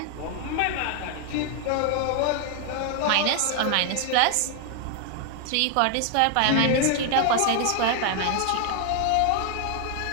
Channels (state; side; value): different; both; correlation 0.00